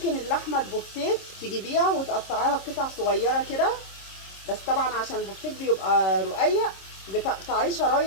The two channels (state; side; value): late; right; 26 ms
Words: اللحمه البفتيك تجيبيها وتقطعيها قطع صغيره كده، بس طبعا عشان البفتيك بيبقى رقيق بتقطعيه